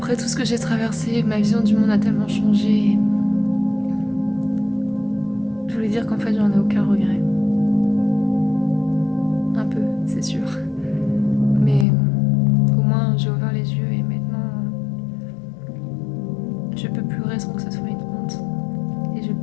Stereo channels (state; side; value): drops out; right; at 11.9 s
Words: tout ce que j'ai traversé, ma vision du monde a tellement changé. Je voulais dire qu'en fait, j'en ai aucun regret. Un peu, c'est sûr. Mais au moins, j'ai ouvert les yeux et maintenant, je peux pleurer sans que ce soit une honte. Et je